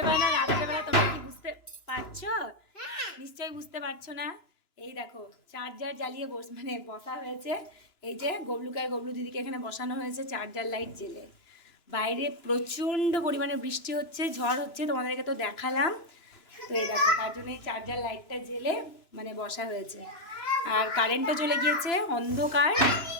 বেলা রাতের বেলা তোমরা কি বুঝতে পারছো? নিশ্চয়ই বুঝতে পারছো না। এই দেখো চার্জার জ্বালিয়ে বসা হয়েছে। এই যে গবলুকার গবলু দিদিকে এখানে বসানো হয়েছে চার্জার লাইট জেলে। বাইরে প্রচণ্ড পরিমাণে বৃষ্টি হচ্ছে, ঝড় হচ্ছে, তোমাদেরকে তো দেখালাম। তো এই দেখো তার জন্য এই চার্জার লাইটটা জেলে বসা হয়েছে। আর কারেন্টও চলে গিয়েছে, অন্ধকার।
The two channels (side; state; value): right; late; 2.9 ms